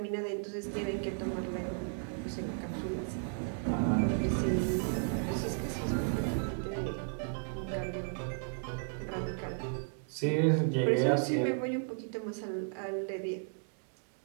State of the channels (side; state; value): left; silent; 55 dB below the other